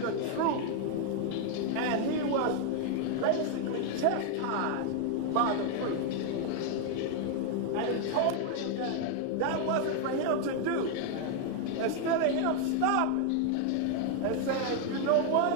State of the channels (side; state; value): both; different; correlation 0.00